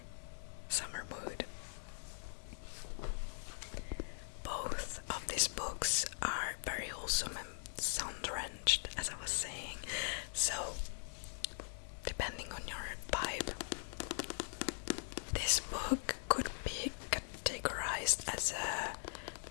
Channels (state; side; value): silent; right; 50 dB below the other